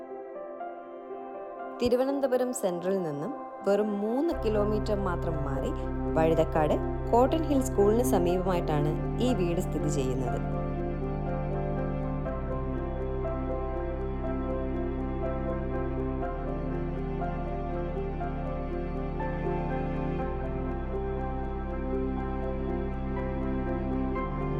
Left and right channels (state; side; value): identical; both; correlation 1.00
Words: തിരുവനന്തപുരം സെൻട്രലിൽ നിന്നും വെറും 3 കിലോമീറ്റർ മാത്രം മാറി വഴുതക്കാട് കോട്ടൺ ഹിൽ സ്കൂളിന് സമീപമായിട്ടാണ് ഈ വീട് സ്ഥിതി ചെയ്യുന്നത്.